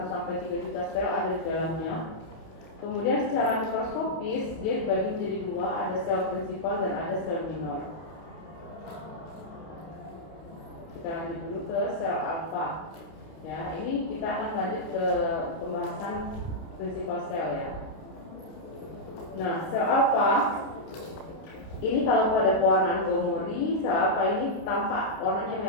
juta sel ada di dalamnya. Kemudian secara mikroskopis dia dibagi menjadi dua, ada sel prinsipal dan ada sel minor. Kita lanjut dulu ke sel alfa. Ya, ini kita akan lanjut ke pembahasan prinsipal sel, ya. Nah, sel alfa ini kalau pada pewarnaan Gomori, sel alfa ini tampak warnanya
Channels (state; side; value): late; right; 30 ms